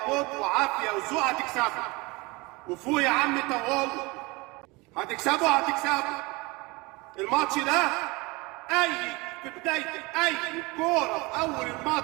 موت وعافيه وذوق. هتكسبوا وفوق يا عم طوال، هتكسبوا الماتش ده. اي في بدايه اي كوره في اول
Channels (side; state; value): left; quieter; 24.7 dB